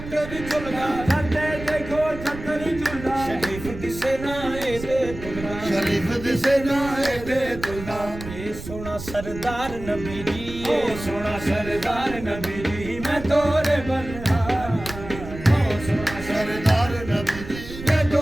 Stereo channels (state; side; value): noise; right; rumble, 12 dB below the sound